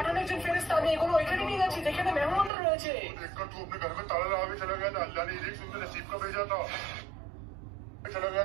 একজন ফেরেশতা, আমি এগুলো ওইখানে নিয়ে যাচ্ছি যেখানে মেহমানরা রয়েছে। देखकर तू अपने घर में ताला लगा के चला गया था, अल्लाह ने रिज़्क सुनकर नसीब का भेजा था। चला गया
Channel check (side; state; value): left; drops out; at 2.5 s